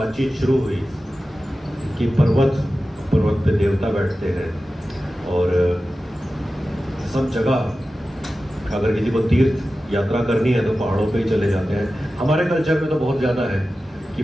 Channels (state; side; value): normal; both; correlation 0.94